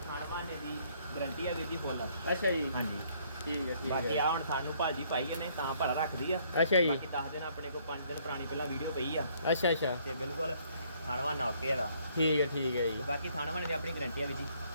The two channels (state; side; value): inverted; both; correlation -0.65